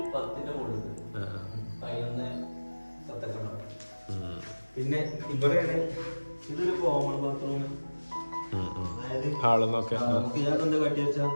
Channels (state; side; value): inverted; both; correlation -1.00